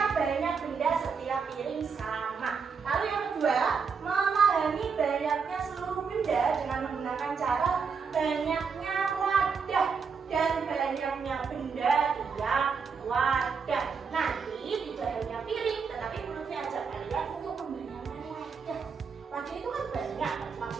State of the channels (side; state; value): left; quieter; 5.7 dB